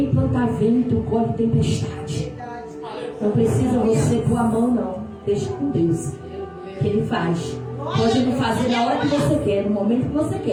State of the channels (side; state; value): both; identical; correlation 1.00